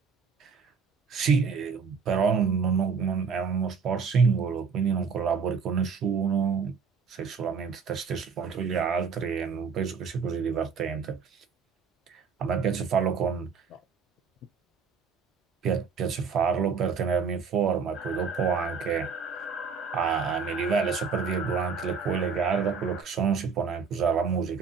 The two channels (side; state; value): left; quieter; 5.6 dB